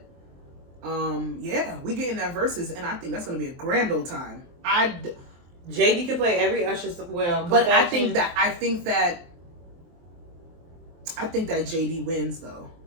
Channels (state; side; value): late; left; 23 ms